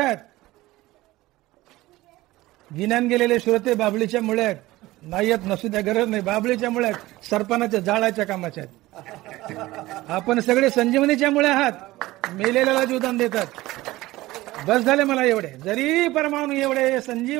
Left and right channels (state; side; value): quieter; left; 18.2 dB